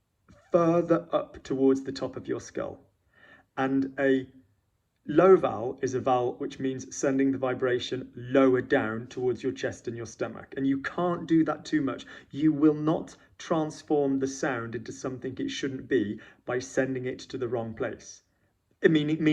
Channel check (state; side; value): identical; both; correlation 1.00